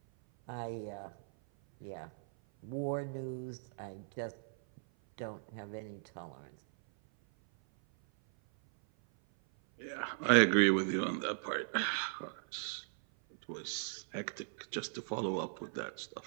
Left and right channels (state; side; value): silent; left; 53 dB below the other